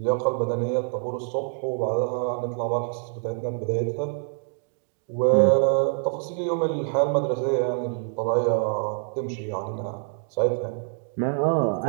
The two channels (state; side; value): silent; left; 61 dB below the other